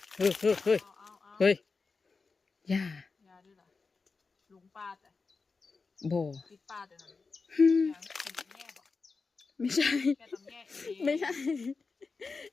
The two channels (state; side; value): quieter; right; 4.4 dB